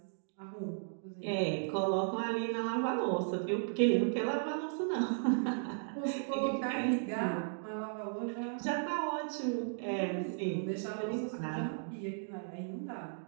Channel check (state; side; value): silent; left; digital silence